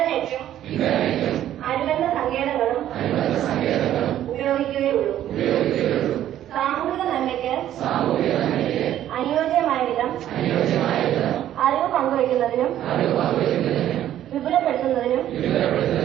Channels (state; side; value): quieter; left; 11.9 dB